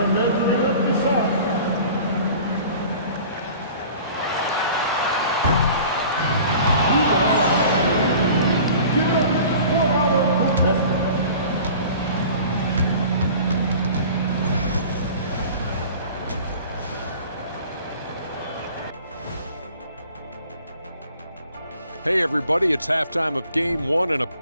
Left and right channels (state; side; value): inverted; both; correlation -0.44